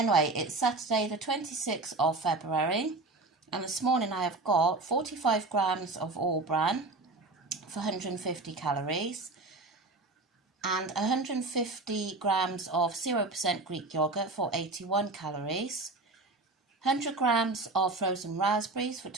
it's Saturday the 26th of February, and this morning I have got 45 grams of all bran for 150 calories and 150 grams of 0% Greek yogurt for 81 calories, 100 grams of frozen raspberries for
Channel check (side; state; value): left; quieter; 3.3 dB